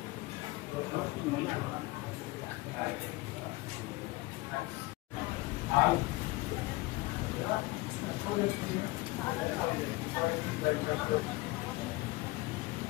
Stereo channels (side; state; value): right; quieter; 21.6 dB